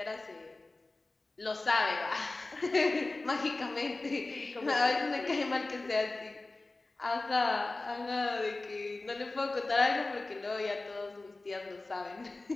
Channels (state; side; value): quieter; right; 3.2 dB